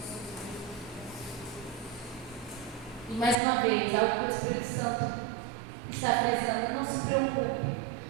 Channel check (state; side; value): drops out; left; at 3.4 s